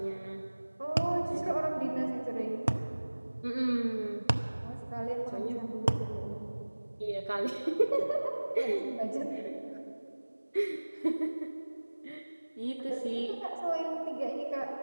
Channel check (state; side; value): inverted; both; correlation -1.00